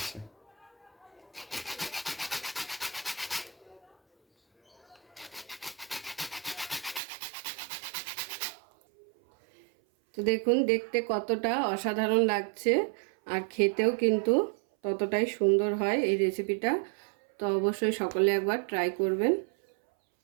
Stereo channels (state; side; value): drops out; left; at 7.0 s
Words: তো দেখুন দেখতে কতটা অসাধারণ লাগছে আর খেতেও কিন্তু ততটাই সুন্দর হয় এই রেসিপিটা। তো অবশ্যই সকলে একবার ট্রাই করবেন।